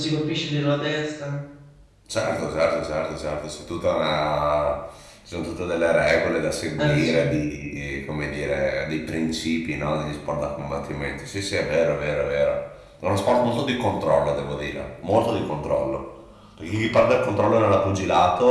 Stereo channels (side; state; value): both; identical; correlation 1.00